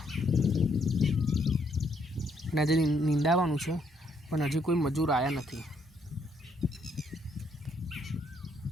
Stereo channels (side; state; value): both; normal; correlation 0.71